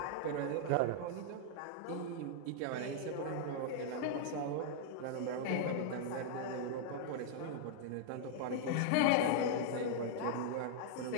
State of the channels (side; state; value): both; different; correlation -0.01